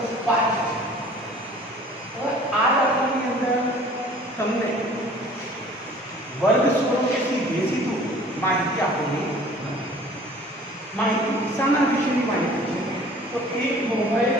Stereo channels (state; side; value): normal; both; correlation 0.49